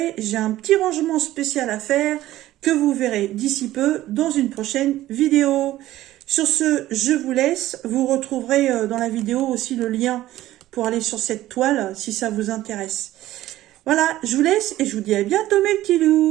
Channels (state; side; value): quieter; left; 14.9 dB